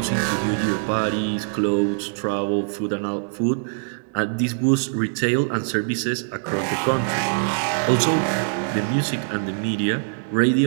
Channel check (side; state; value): left; silent; digital silence